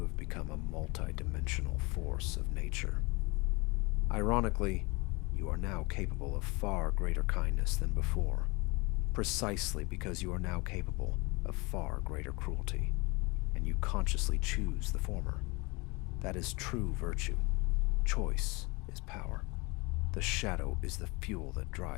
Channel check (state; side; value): quieter; right; 26.6 dB